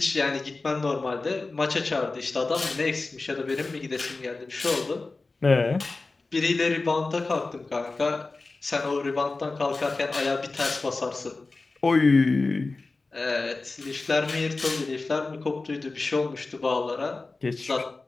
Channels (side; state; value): right; quieter; 3.6 dB